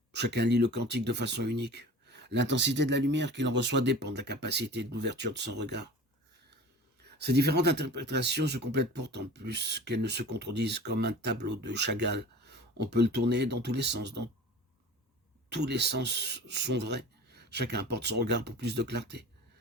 Chacun lit le cantique de façon unique. L'intensité de la lumière qu'il en reçoit dépend de la capacité de l'ouverture de son regard. Ces différentes interprétations se complètent pourtant plus qu'elles ne se contredisent, comme un tableau de Chagall. On peut le tourner dans tous les sens, tous les sens sont vrais. Chacun apporte son regard pour plus de clarté.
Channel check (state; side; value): normal; both; correlation 0.39